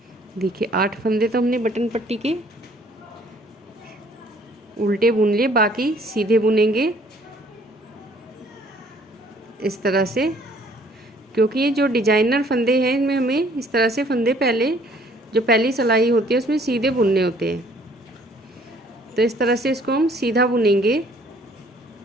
देखिए 8 फंदे तो हमने बटन पट्टी के उल्टे बुन लिए, बाकी सीधे बुनेंगे इस तरह से, क्योंकि ये जो डिजाइनर फंदे हैं इनमें हमें इस तरह से फंदे पहले जो पहली सिलाई होती है उसमें सीधे बुनने होते हैं। तो इस तरह से इसको हम सीधा बुनेंगे।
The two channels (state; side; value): normal; both; correlation 0.59